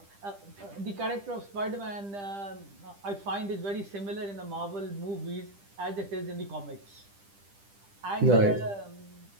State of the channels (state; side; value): late; left; 10 ms